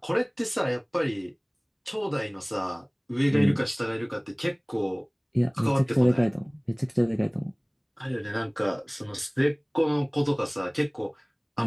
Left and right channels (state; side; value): identical; both; correlation 1.00